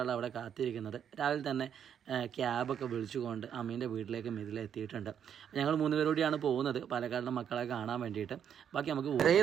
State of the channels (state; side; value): quieter; left; 8.6 dB